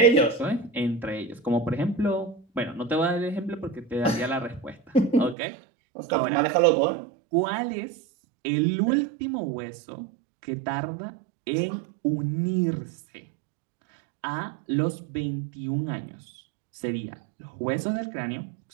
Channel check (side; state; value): left; drops out; at 5.4 s